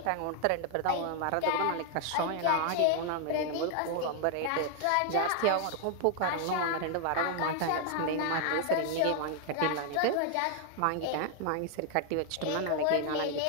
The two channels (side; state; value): both; different; correlation 0.00